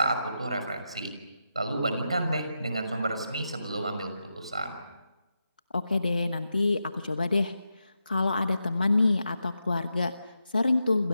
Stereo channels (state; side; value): inverted; both; correlation -0.87